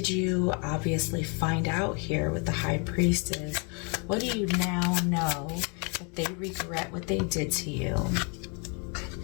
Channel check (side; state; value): right; quieter; 35.1 dB